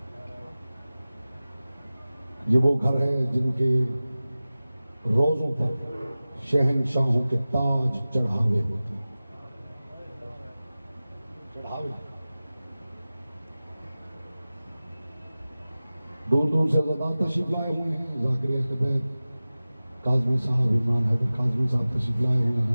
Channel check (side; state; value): both; inverted; correlation -0.97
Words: ये वो घर है जिनके रोज़ों पर शहनशाहों के ताज चढ़ावे होते हैं। चढ़ावे दूर दूर से ज़ादात तशरीफ लाए हुए हैं। ज़ाकिर अहले बैत काज़मी साहब, इमरान हैदर काज़मी साहब तशरीफ लाए हुए